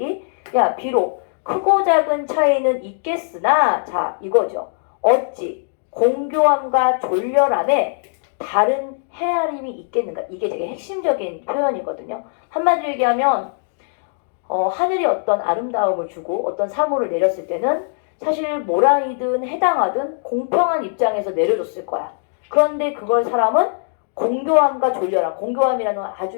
야, 비록 크고 작은 차이는 있겠으나 자, 이거죠. 어찌 공교함과 졸렬함에 다른 헤아림이 있겠는가? 이게 되게 핵심적인 표현이거든요. 한마디로 얘기하면 하늘이 어떤 아름다움을 주고 어떤 사물을 내렸을 때는 사실 모란이든 해당하든 공평한 입장에서 내려줬을 거야. 그런데 그걸 사람은 공교함과 졸렬함, 공교함이라는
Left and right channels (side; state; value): right; silent; digital silence